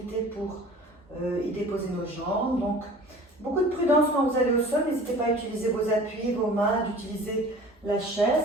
pour y déposer nos jambes. Donc beaucoup de prudence quand vous allez au sol. N'hésitez pas à utiliser vos appuis, vos mains, d'utiliser la chaise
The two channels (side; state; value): both; normal; correlation 0.44